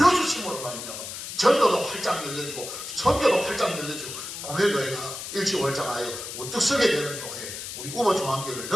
말미암아 전도도 활짝 열려지고 선교도 활짝 열려지고 고매교회가 일치월장하여 우뚝 서게 되는 교회, 우리 우모 중앙교회를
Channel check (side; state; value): left; noise; hiss, 8 dB below the sound